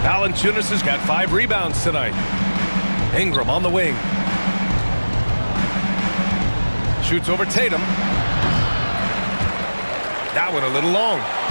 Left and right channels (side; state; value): both; inverted; correlation -1.00